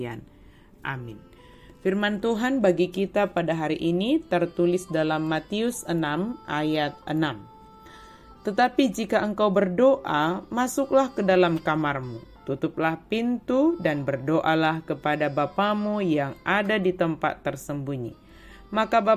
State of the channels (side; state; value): both; identical; correlation 1.00